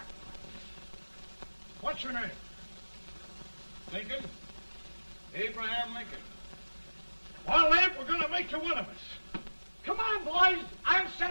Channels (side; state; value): both; inverted; correlation -1.00